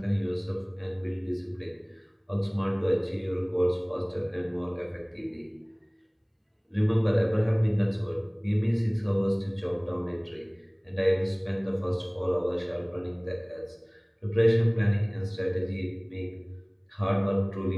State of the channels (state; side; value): identical; both; correlation 1.00